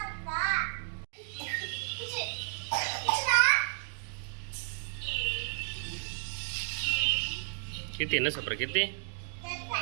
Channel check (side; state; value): left; silent; digital silence